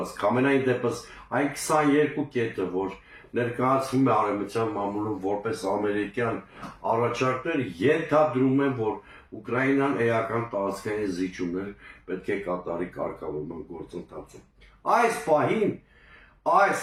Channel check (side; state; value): both; identical; correlation 1.00